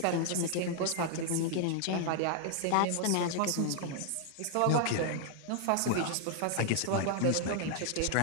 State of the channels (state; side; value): different; both; correlation 0.00